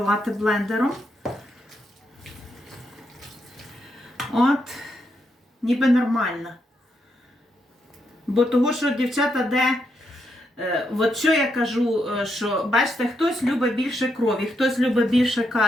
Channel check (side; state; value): both; normal; correlation 0.80